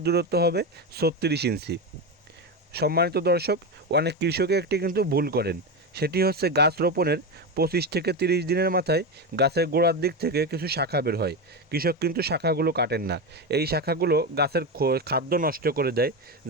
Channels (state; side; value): normal; both; correlation 0.16